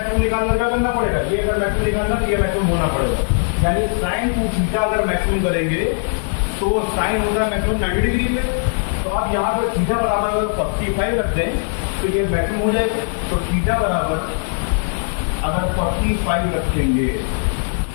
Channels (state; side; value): silent; right; digital silence